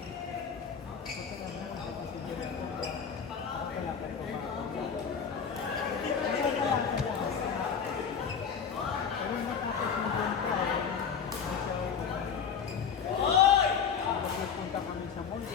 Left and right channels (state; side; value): quieter; right; 6.8 dB